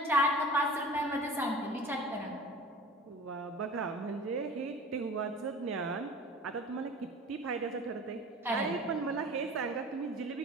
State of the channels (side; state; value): both; normal; correlation 0.41